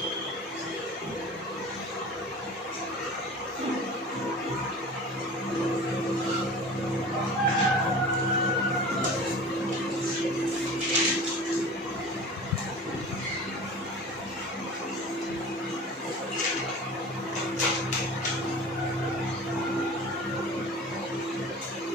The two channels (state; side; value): normal; both; correlation 0.38